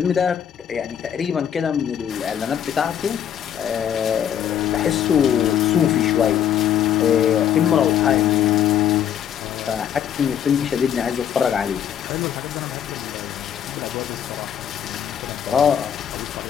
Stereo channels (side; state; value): right; quieter; 9.3 dB